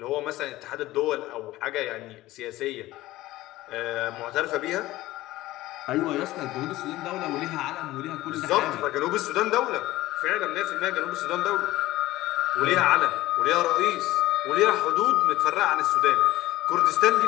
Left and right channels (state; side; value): quieter; right; 17.0 dB